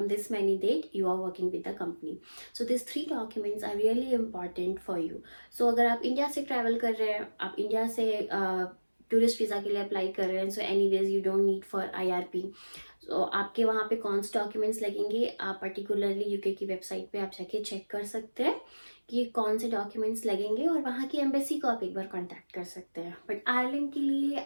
this many date you are working with the company. This 3 documents are really important for you. अगर आप India से travel कर रहे हैं, आप India से tourist visa के लिए अप्लाई कर रहे हैं, so anyways you don't need for IRP. आपके वहाँ पे कौन से डॉक्यूमेंट्स लगेंगे, आप पर्टिकुलरली यूके की वेबसाइट पे आप जाके चेक कर सकते हैं कि कौन से डॉक्यूमेंट्स लगेंगे और वहाँ की एम्बेसी को आप एक बार कांटेक्ट कर सकते हैं। बट आयरलैंड के लिए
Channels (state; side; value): inverted; both; correlation -1.00